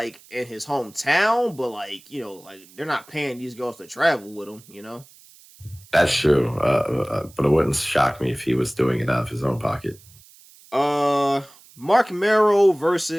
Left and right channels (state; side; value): noise; right; hiss, 25 dB below the sound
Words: in his hometown, but like they're not paying these girls to travel with them. That's true, but it wouldn't shock me if he was doing it out of his own pocket. Mark Merrow